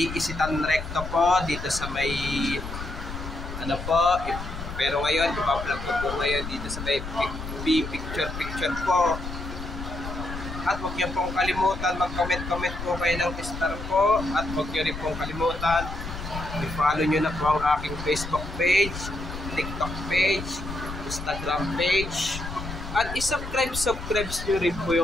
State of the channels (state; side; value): noise; left; rumble, 8 dB below the sound